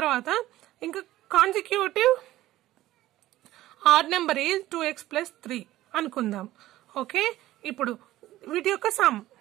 ఇంకా consecutive odd number is 2x + 3 అనుకుందాం. ఓకే, ఇప్పుడు వీటి యొక్క సమ్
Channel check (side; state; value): left; quieter; 15.3 dB